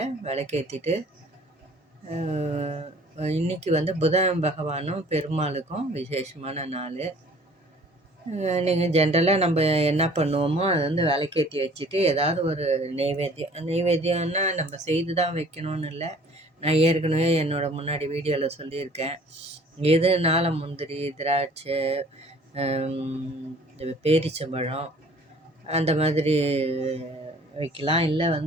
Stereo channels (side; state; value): both; normal; correlation 0.52